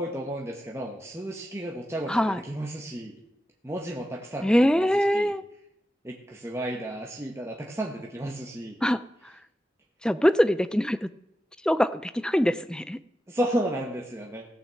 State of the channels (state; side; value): normal; both; correlation 0.91